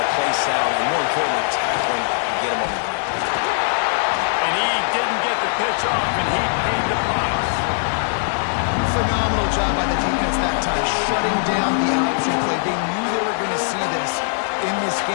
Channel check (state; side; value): silent; right; digital silence